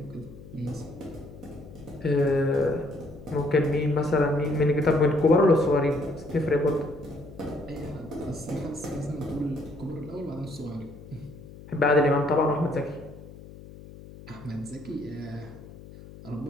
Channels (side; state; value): left; noise; hum, 17 dB below the sound